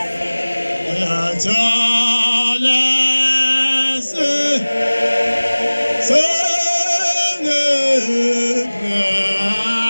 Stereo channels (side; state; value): both; inverted; correlation -1.00